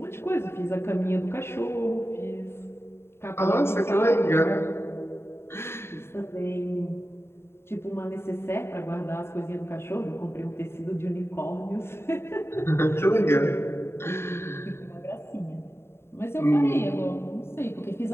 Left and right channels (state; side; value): late; right; 0.12 ms